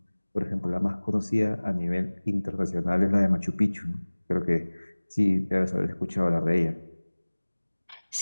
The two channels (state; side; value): inverted; both; correlation -1.00